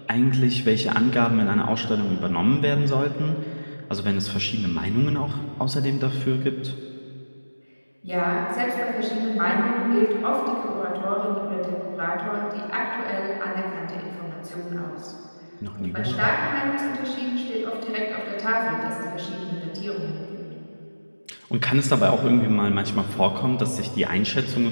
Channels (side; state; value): both; inverted; correlation -1.00